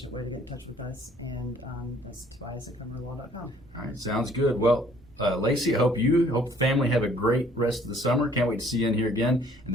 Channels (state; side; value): noise; right; rumble, 26 dB below the sound